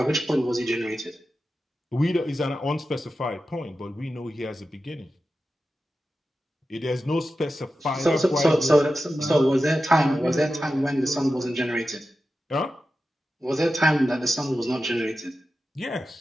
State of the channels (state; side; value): normal; both; correlation 0.92